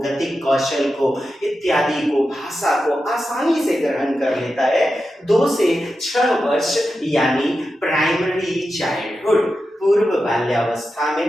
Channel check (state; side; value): normal; both; correlation 0.90